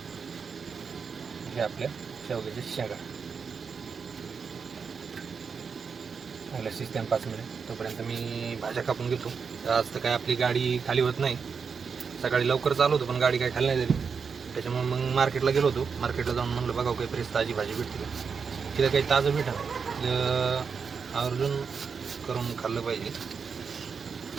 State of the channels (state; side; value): quieter; left; 5.8 dB